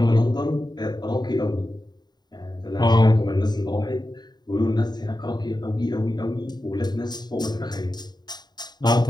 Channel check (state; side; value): late; right; 0.20 ms